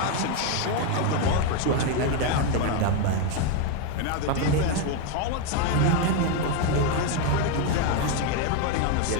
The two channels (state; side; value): different; both; correlation 0.02